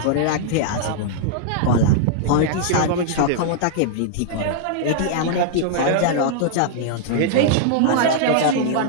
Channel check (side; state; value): both; different; correlation -0.01